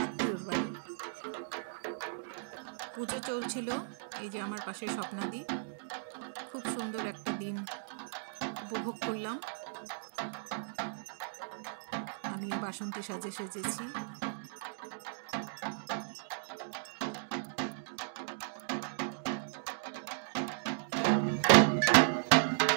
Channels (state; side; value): silent; left; digital silence